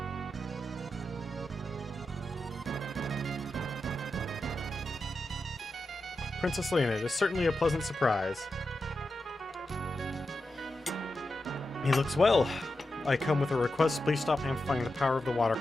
Princess Leonid is certainly a pleasant surprise. He looks well. I come with a request. Please stop amplifying the power of the water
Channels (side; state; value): both; normal; correlation 0.89